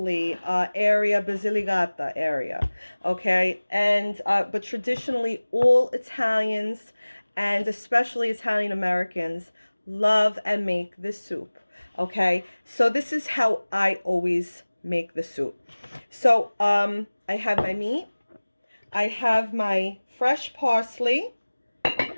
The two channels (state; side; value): inverted; both; correlation -1.00